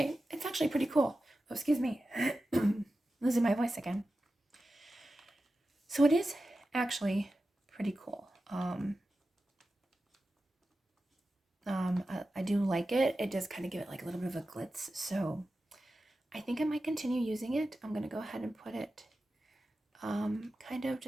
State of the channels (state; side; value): normal; both; correlation 0.93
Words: it's actually pretty cool. Oh, excuse me. Losing my voice again. So it is actually pretty cool. I do like it. It does kind of give it like a little bit of a glitz. So I think I might continue using it. I'm going to go ahead and put it kind of